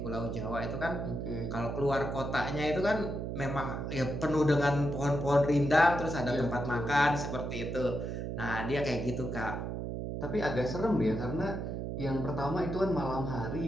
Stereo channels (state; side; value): noise; right; hum, 4 dB below the sound